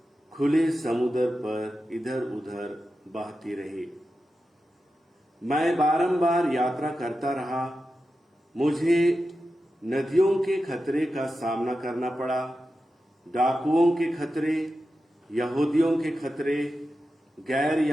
खुले समुद्र पर इधर उधर बहती रही। मैं बारंबार यात्रा करता रहा। मुझे नदियों के खतरे का सामना करना पड़ा, डाकुओं के खतरे, यहूदियों के खतरे, गैर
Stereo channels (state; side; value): normal; both; correlation 0.91